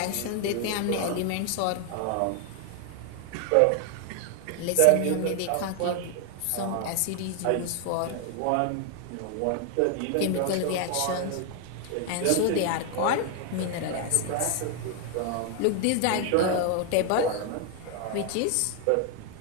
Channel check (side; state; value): both; different; correlation 0.00